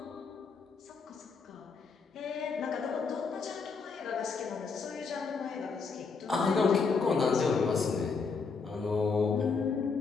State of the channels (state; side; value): quieter; right; 4.9 dB